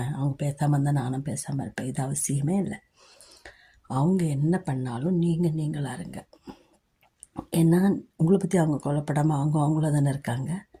அவங்க பேசாமல் இருந்தால் நானும் பேசாமல் இருப்பேன். இது அவசியமே இல்லை. அவங்க என்ன பண்ணாலும் நீங்களாக இருங்க. ஏன்னா உங்களை பற்றி அவங்க கொல்லப்படாமல் அவங்கள தானே இருக்காங்க.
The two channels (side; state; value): both; identical; correlation 1.00